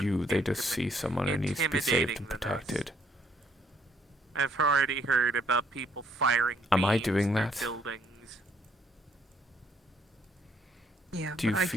you, they just see someone who needs to be saved and intimidating than us. protected. I've already heard about people firing Am I beams doing through that? buildings. Yeah, Do you but I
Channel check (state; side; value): normal; both; correlation 0.68